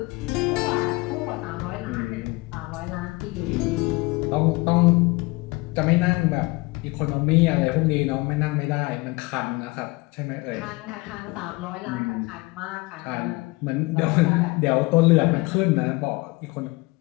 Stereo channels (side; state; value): right; quieter; 23.9 dB